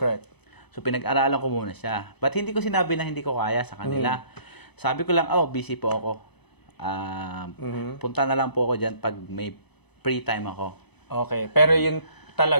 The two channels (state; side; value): late; right; 0.99 ms